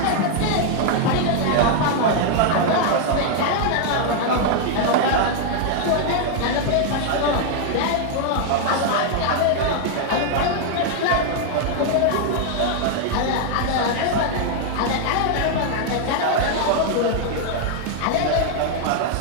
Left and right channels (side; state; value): both; different; correlation 0.00